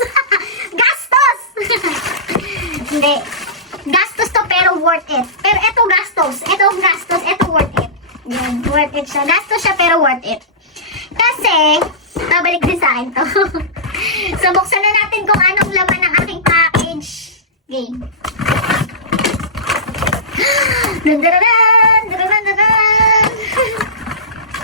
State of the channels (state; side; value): normal; both; correlation -0.20